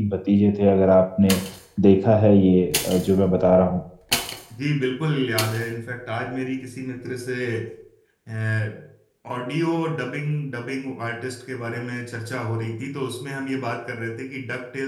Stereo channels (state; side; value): identical; both; correlation 1.00